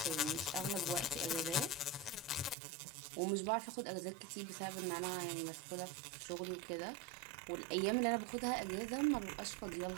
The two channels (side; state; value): left; drops out; at 2.6 s